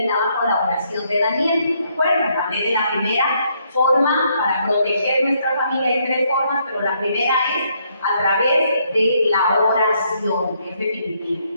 con la oración de Daniel. ¿De acuerdo? Hablé de la primera forma para proteger nuestra familia. Hay 3 formas, pero la primera es a través de la oración, es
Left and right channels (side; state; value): both; inverted; correlation -0.72